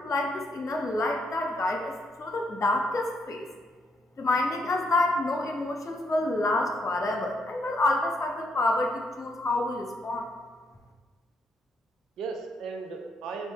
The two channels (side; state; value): both; normal; correlation 0.75